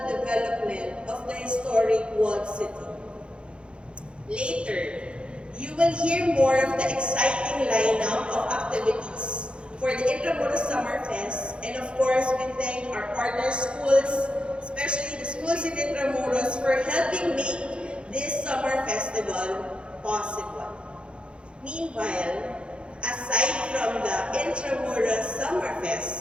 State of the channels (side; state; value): left; late; 0.056 ms